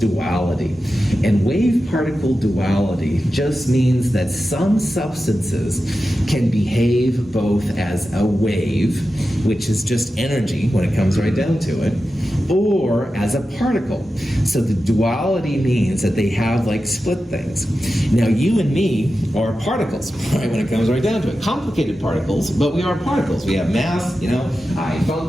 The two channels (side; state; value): both; normal; correlation 0.92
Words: And wave-particle duality just means that some substances can behave both as a wave, which is just energy when it comes right down to it, or as a particle. So the duality means that they have like split things. Now you and me are particles, right, when it comes right down to it. Complicated particles, but we are particles. We have mass, I